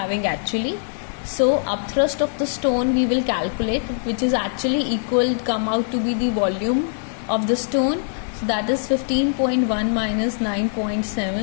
actually. So upthrust of the stone we will calculate, which is actually come out to be the volume of the stone. So that is 15.1 minus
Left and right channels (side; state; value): right; silent; 64 dB below the other